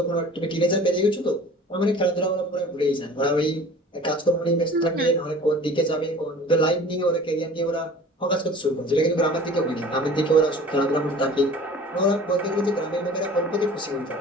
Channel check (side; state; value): both; normal; correlation 0.44